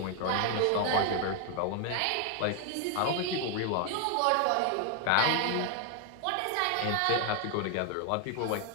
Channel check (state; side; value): different; both; correlation 0.00